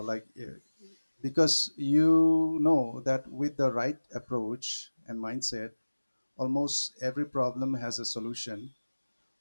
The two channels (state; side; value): inverted; both; correlation -1.00